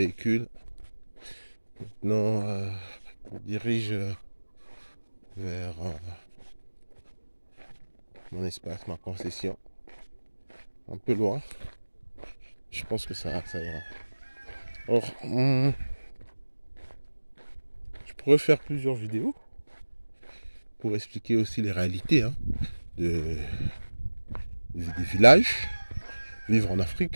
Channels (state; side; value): inverted; both; correlation -1.00